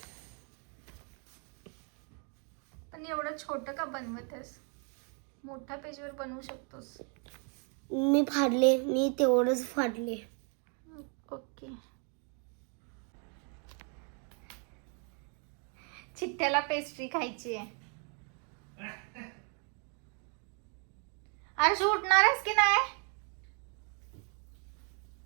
पण एवढं छोटं का बनवत आहेस? मोठ्या पेजवर बनवू शकतोस. मी तेवढंच फाडले. ओके. चिट्ट्याला पेस्ट्री खायची आहे. आरशू उठणार आहेस की नाही?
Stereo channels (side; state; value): left; quieter; 39.5 dB